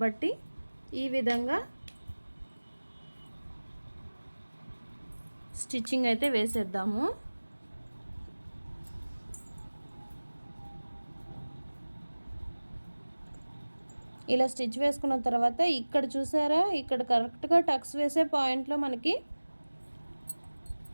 ఈ విధంగా స్టిచ్చింగ్ అయితే వేసేద్దాము. ఇలా స్టిచ్ వేసుకున్న తర్వాత ఇక్కడ చూసారా, ఇక్కడ కరెక్ట్గా టక్స్ వేసే పాయింట్లో మనకి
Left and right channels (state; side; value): inverted; both; correlation -1.00